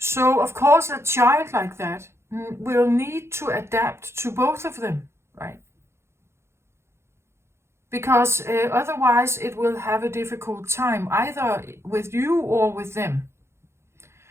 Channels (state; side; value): late; left; 0.13 ms